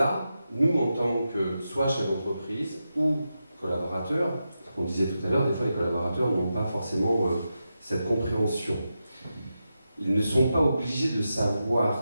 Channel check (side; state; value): both; inverted; correlation -0.89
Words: nous, en tant que soit chef d'entreprise ou collaborateurs, on disait tout à l'heure, des fois les collaborateurs n'ont pas forcément cette compréhension. Ils ne sont pas obligés de